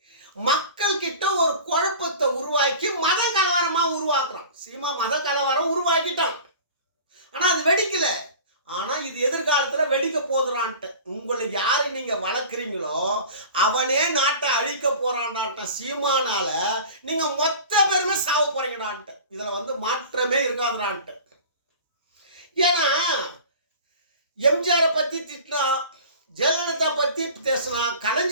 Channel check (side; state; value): both; inverted; correlation -0.39